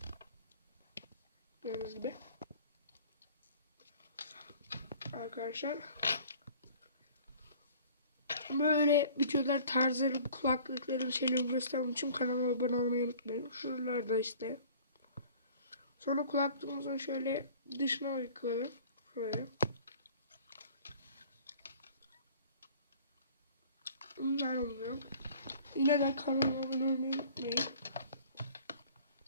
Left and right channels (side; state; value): both; inverted; correlation -0.48